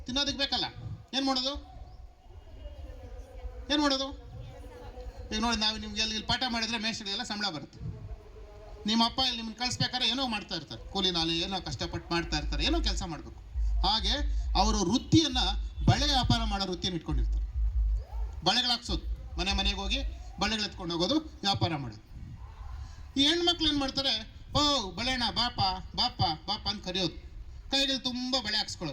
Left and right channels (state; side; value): identical; both; correlation 1.00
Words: ತಿನ್ನೋದಕ್ಕೆ ಬೇಕಲ್ಲ, ಏನು ಮಾಡೋದು? ಈಗ ನೋಡಿ, ನಾವು ನಿಮ್ಗೆ ಇಲ್ಲಿ ಪಾಠ ಮಾಡಿದ್ರೆ ಮೇಷ್ಟ್ರಿಗೆಲ್ಲ ಸಂಬಳ ಬರುತ್ತೆ. ನಿಮ್ಮ ಅಪ್ಪ ಇಲ್ಲಿ ನಿಮ್ಮನ್ನು ಕಳಿಸ್ಬೇಕಾದ್ರೆ ಏನೋ ಮಾಡ್ತಾ ಇರ್ತಾರೆ, ಕೂಲಿ ನಾಲಿ ಏನೋ ಕಷ್ಟಪಟ್ಟು ಮಾಡ್ತಾ ಇರ್ತಾರೆ, ಏನೋ ಕೆಲಸ ಮಾಡಬೇಕು. ಹಾಗೆ ಅವರು ವೃತ್ತಿಯನ್ನು ಬಳೆ ವ್ಯಾಪಾರ ಮಾಡೋ ವೃತ್ತಿಯನ್ನು ಇಟ್ಕೊಂಡಿರ್ತಾರೆ. ಬಳೆಗಳು ಹಾಕ್ಸೋದು, ಮನೆ ಮನೆಗೆ ಹೋಗಿ ಬಳೆಗಳು ಎತ್ಕೊಂಡು ಹೋಗೋದು, ವ್ಯಾಪಾರ ಮಾಡೋದು. ಈ ಹೆಣ್ಮಕ್ಳು ಏನು ಮಾಡ್ತಾರೆ, ಓ ಬಳೆಣ ಬಾಪ ಬಾಪ ಬಾಪ ಅಂತ ಕರೆಯೋದು, ಕೈಗಳು ತುಂಬ ಬಳೆ